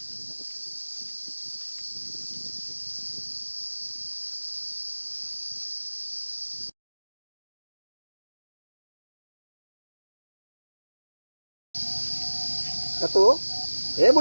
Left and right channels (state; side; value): inverted; both; correlation -1.00